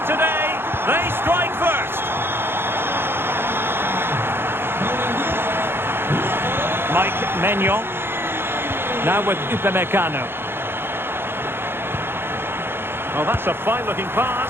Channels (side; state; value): left; late; 0.11 ms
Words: today. They strike first. Mike Maignan. Now with Upamecano. Oh, that's a fine-looking